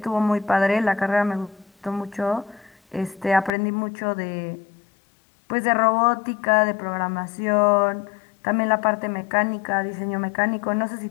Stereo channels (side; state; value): right; drops out; at 3.5 s